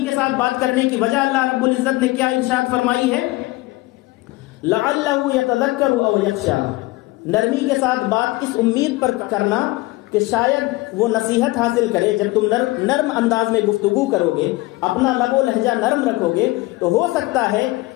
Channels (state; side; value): quieter; right; 20.6 dB